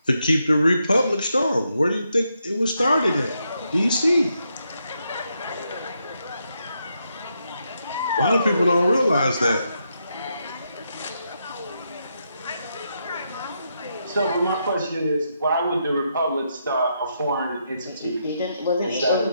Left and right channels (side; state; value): both; inverted; correlation -0.81